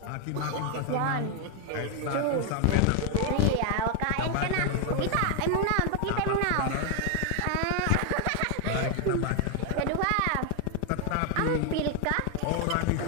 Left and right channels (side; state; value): both; different; correlation 0.00